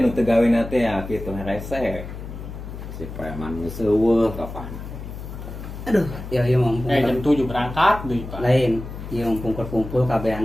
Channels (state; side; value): noise; left; hum, 10 dB below the sound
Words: nu teu gawena teh ya kitu rese. si preman geus eueuh kapan. Aduh, ya ieu mah Jam 7 berangkat deui, Pak. lain. Ieu mah kumpul-kumpul